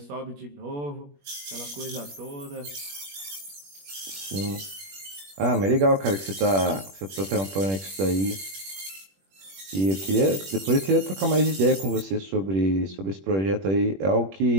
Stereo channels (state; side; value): late; left; 21 ms